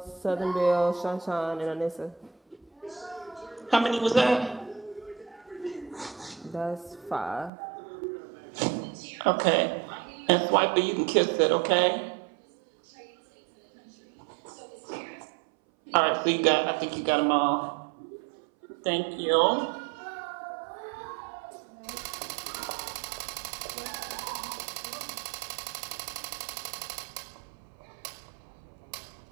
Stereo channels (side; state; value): left; drops out; at 7.5 s